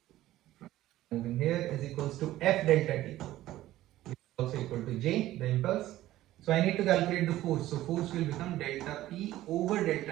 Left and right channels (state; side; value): quieter; left; 15.0 dB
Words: moving here is equals to F delta T, which is also equal to J, the impulse. So I need to calculate the force. So force will become delta P over